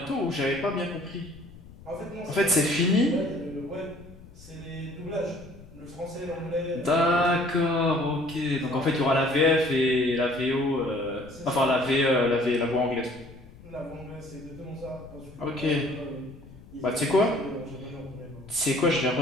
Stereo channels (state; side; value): noise; left; rumble, 20 dB below the sound